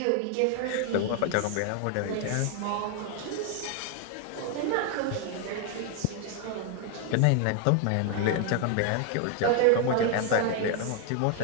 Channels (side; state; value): both; different; correlation 0.00